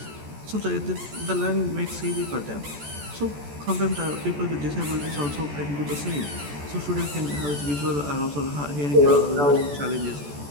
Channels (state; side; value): late; left; 14 ms